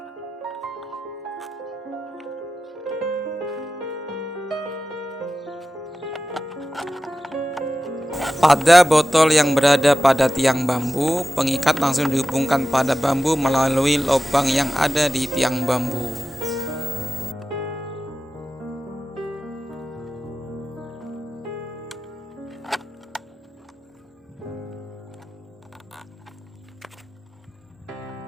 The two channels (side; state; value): both; normal; correlation 0.94